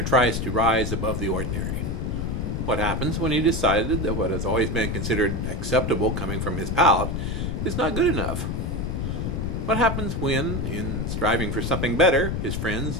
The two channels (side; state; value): left; noise; rumble, 1 dB below the sound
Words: tries to rise above the ordinary? What happens when he decided that what has always been considered acceptable coming from his palette is not good enough? What happens when, in striving for something better, his friends